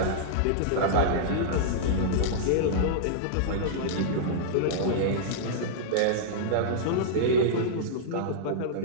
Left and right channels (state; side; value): different; both; correlation -0.02